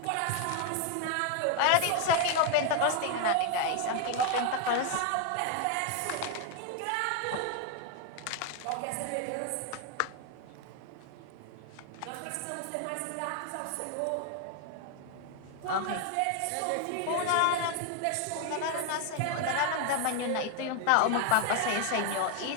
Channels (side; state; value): both; different; correlation 0.00